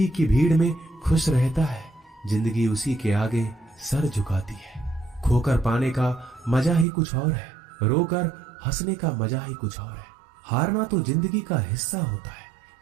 की भीड़ में खुश रहता है जिंदगी उसी के आगे सर झुकाती है। खोकर पाने का मजा ही कुछ और है, रोकर हंसने का मजा ही कुछ और है। हारना तो जिंदगी का हिस्सा होता है,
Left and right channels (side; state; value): left; drops out; at 6.9 s